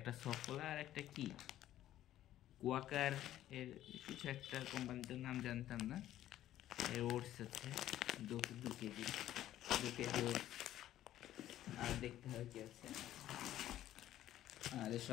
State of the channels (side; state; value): right; quieter; 12.9 dB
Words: সফলা আর একটা কি কোয়াকার এর কিছু একটা কোম্পানিটার নাম জানতাম না। এর ওটস আছে 2 কেজি ওটস। আর দেখতে হয় কি আছে। আর